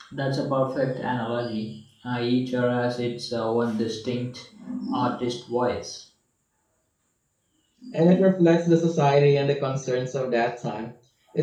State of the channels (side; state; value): both; identical; correlation 1.00